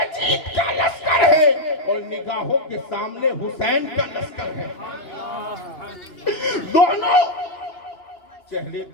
کا لشکر ہے اور نگاہوں کے سامنے حسین کا لشکر ہے. دونوں چہرے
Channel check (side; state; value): right; late; 3.0 ms